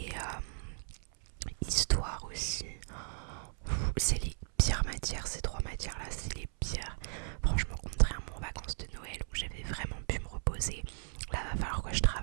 histoire aussi. C'est les pires matières, ces 3 matières là, c'est les pires. Franchement, contrairement aux vacances de Noël où j'avais vraiment pu me reposer, là va falloir que je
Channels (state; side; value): silent; left; 54 dB below the other